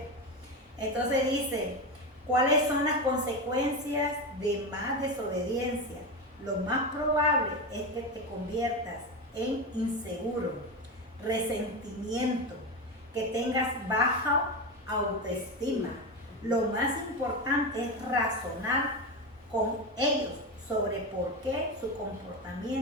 Entonces dice, ¿cuáles son las consecuencias de más desobediencia? Lo más probable es que te conviertas en inseguro, resentimiento, que tengas baja autoestima. Lo más importante es razonar con ellos sobre por qué su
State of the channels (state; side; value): normal; both; correlation 0.18